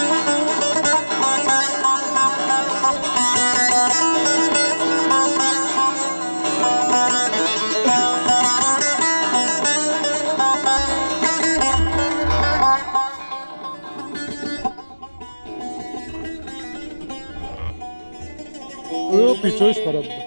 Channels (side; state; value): both; inverted; correlation -1.00